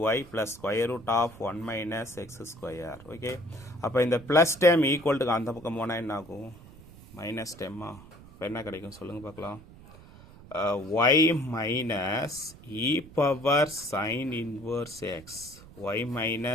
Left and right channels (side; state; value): right; noise; rumble, 20 dB below the sound